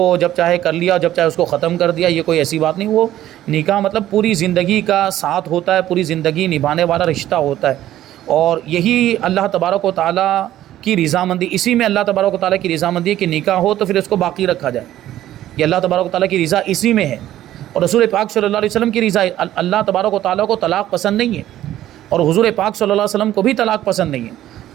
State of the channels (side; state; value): left; quieter; 13.2 dB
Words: جب چاہے کر لیا، جب چاہے اس کو ختم کر دیا، یہ کوئی ایسی بات نہیں. وہ نکاح مطلب پوری زندگی کا ساتھ ہوتا ہے، پوری زندگی نبھانے والا رشتہ ہوتا ہے، اور یہی اللہ تبارک و تعالیٰ کی رضامندی، اسی میں اللہ تبارک و تعالیٰ کی رضامندی ہے کہ نکاح ہو تو پھر اس کو باقی رکھا جائے. یہ اللہ تبارک و تعالیٰ کی رضا اسی میں ہے، اور رسول پاک صلی اللہ علیہ وسلم کی رضا. اللہ تبارک و تعالیٰ کو طلاق پسند نہیں ہے، اور حضور پاک صلی اللہ علیہ وسلم کو بھی طلاق پسند نہیں ہے.